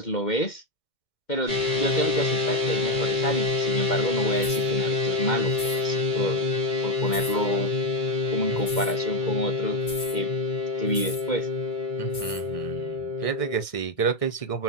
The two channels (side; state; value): right; late; 2.1 ms